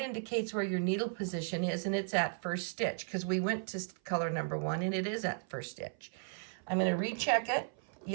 where your needle position is, and it's at first stitch because we went to color number 1, and it is at first stitch. I'm going to recheck it.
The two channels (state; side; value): silent; left; 54 dB below the other